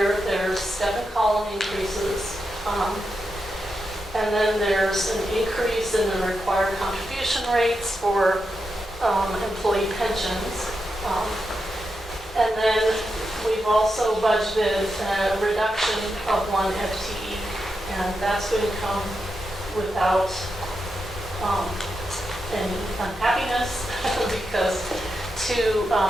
there's step and column increases. And then there's an increase in the required contribution rates for employee pensions. And then we've also budgeted a reduction of 1 FTE, and that's going to come without any unhappiness because 2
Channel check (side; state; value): both; normal; correlation 0.87